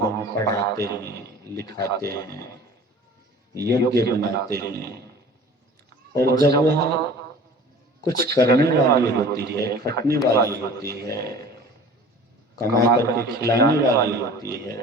पढ़ाते हैं, लिखाते हैं, योग्य बनाते हैं, और जब वह कुछ करने वाली होती है, खटने वाली होती है, कमा करके खिलाने वाली होती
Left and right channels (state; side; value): normal; both; correlation 0.44